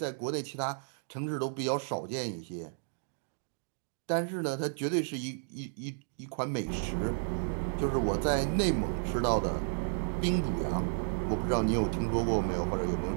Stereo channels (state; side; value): silent; left; digital silence